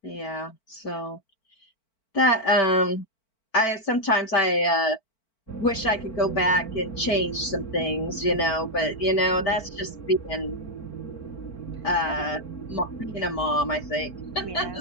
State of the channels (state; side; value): late; right; 4.5 ms